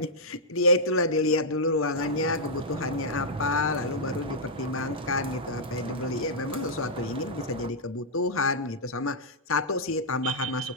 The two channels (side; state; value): both; normal; correlation -0.08